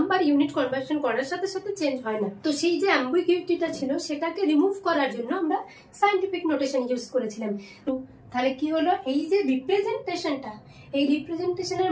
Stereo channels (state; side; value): identical; both; correlation 1.00